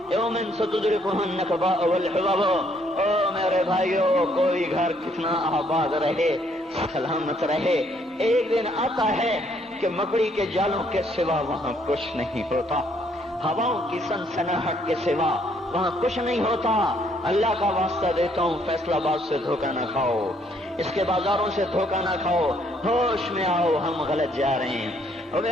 یوم ستدرکها النکباء والحباب. او میرے بھائیو، کوئی گھر کتنا آباد رہے، سلامت رہے، ایک دن آتا ہے کہ مکڑی کے جالوں کے سوا وہاں کچھ نہیں ہوتا، ہواؤں کی سنسناہٹ کے سوا وہاں کچھ نہیں ہوتا. اللہ کا واسطہ دیتا ہوں فیصلہ آباد سے دھوکہ نہ کھاؤ، اس کے بازاروں سے دھوکہ نہ کھاؤ، ہوش میں آؤ، ہم غلط جا رہے ہیں. اور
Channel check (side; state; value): both; normal; correlation 0.68